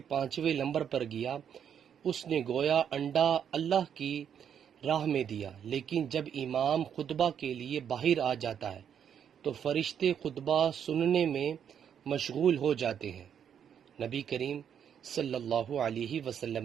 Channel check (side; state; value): left; quieter; 8.4 dB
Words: پانچویں نمبر پر گیا اس نے گویا انڈا اللہ کی راہ میں دیا۔ لیکن جب امام خطبہ کے لیے باہر آ جاتا ہے تو فرشتے خطبہ سننے میں مشغول ہو جاتے ہیں۔ نبی کریم صلی اللہ علیہ